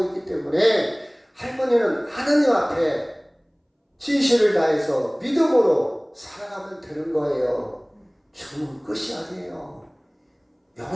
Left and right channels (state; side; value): identical; both; correlation 1.00